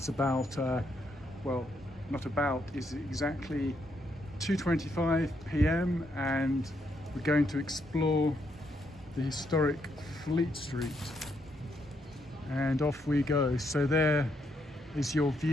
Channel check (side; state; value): both; normal; correlation 0.77